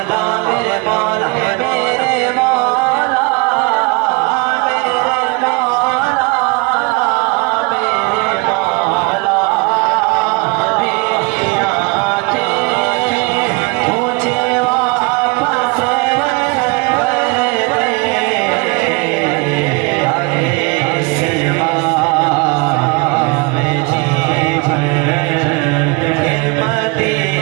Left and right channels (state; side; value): quieter; left; 28.4 dB